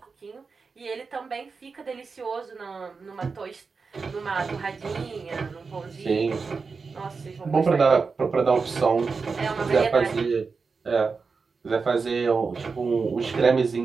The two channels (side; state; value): left; quieter; 4.8 dB